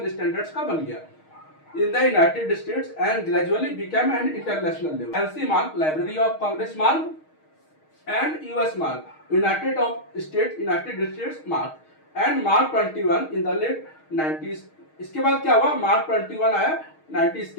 स्टैंडर्ड्स का बन गया in the United States and gradually became an international level. LC mark, Library of Congress mark, and US mark, United States mark, and Mark 21 in the late 90s. इसके बाद क्या हुआ? Mark 21 आया 90s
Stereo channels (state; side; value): late; right; 6.4 ms